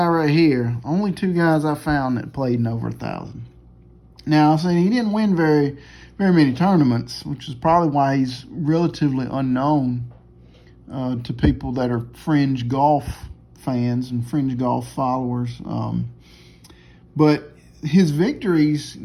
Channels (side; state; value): both; identical; correlation 1.00